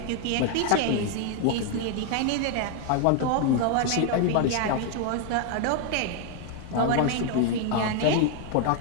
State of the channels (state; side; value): different; both; correlation 0.01